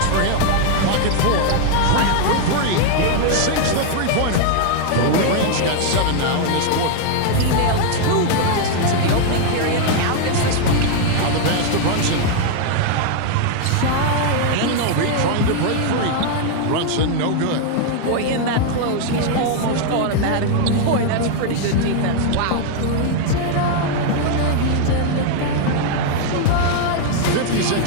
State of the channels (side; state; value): both; different; correlation 0.00